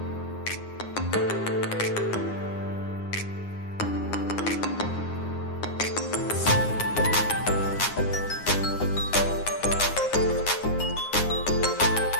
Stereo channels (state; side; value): late; right; 9.7 ms